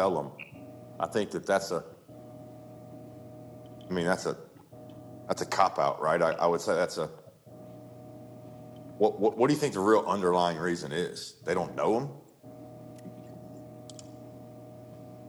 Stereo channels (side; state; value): both; identical; correlation 1.00